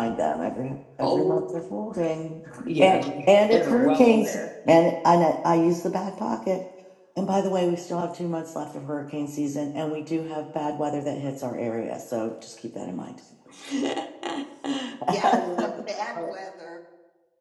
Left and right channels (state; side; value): identical; both; correlation 1.00